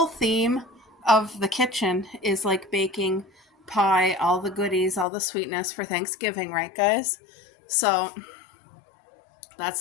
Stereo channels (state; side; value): drops out; right; at 5.1 s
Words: theme of the kitchen is like baking pie, all the goodies, all the sweetness for Thanksgiving, right guys? So that's